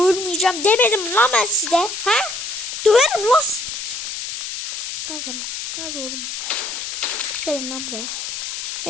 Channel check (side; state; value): left; noise; hiss, 5 dB below the sound